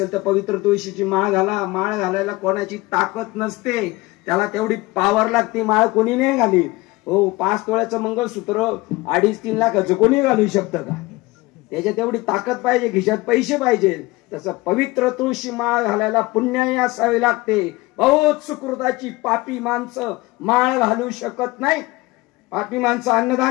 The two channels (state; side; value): quieter; right; 21.2 dB